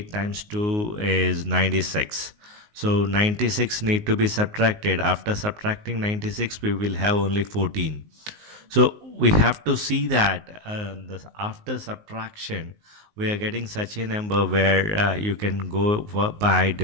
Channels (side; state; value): left; late; 19 ms